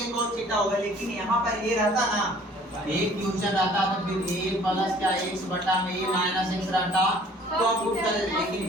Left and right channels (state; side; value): normal; both; correlation 0.54